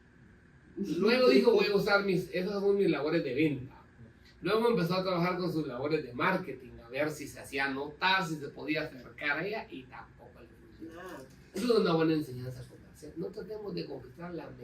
Luego dijo, voy a usar esas son mis labores de venta. Luego empezó a trabajar con sus labores de marketing, a ver si se hacía notar, si se podía acercar a ella, y tampoco le funcionaba. Eso es una buena enseñanza comercial. No tratemos de conquistar la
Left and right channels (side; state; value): both; identical; correlation 1.00